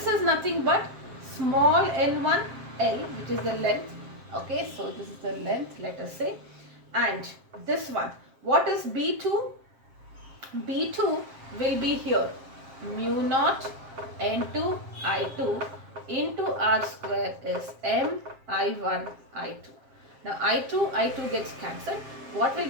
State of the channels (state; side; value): late; left; 7.5 ms